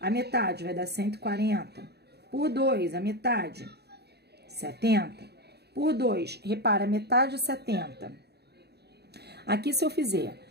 a metade vai dar 140. Por 2, a metade, 70. Por 2, repara, metade 70. Aqui, se eu fizer,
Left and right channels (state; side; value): late; left; 0.48 ms